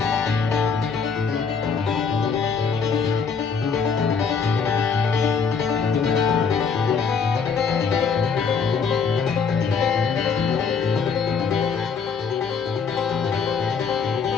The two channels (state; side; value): quieter; right; 5.8 dB